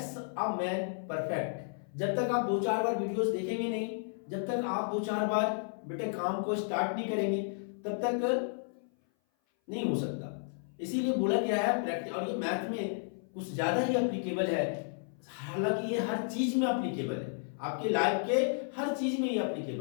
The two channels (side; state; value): right; silent; 56 dB below the other